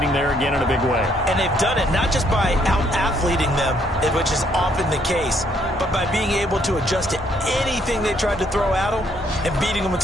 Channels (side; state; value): both; normal; correlation 0.69